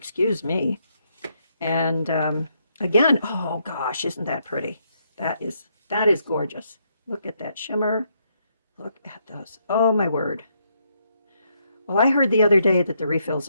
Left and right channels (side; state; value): both; inverted; correlation -0.76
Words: me. And again, oh gosh, isn't that pretty? That is gorgeous. Look at that shimmer. Look at those. Oh my word. Well, I heard the other day that the refills